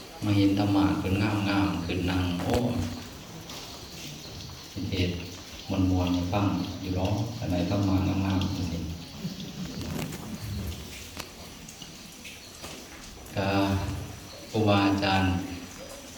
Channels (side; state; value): both; identical; correlation 1.00